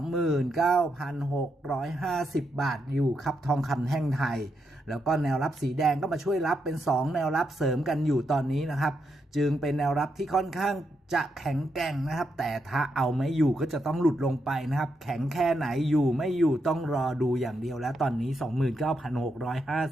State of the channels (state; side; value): normal; both; correlation 0.82